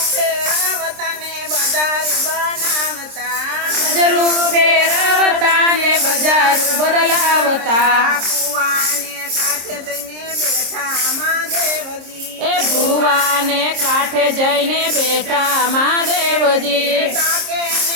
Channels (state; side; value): late; left; 26 ms